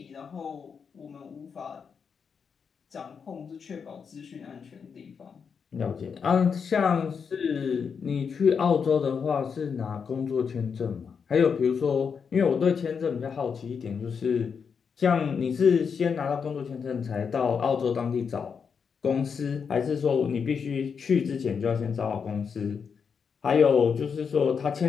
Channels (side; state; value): right; quieter; 6.3 dB